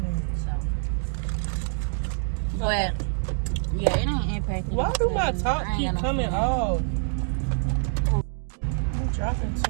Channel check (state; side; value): silent; left; 61 dB below the other